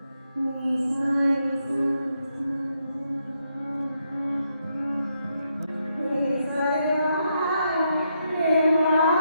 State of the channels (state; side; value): inverted; both; correlation -0.79